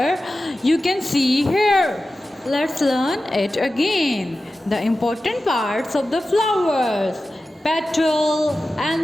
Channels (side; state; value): both; normal; correlation 0.94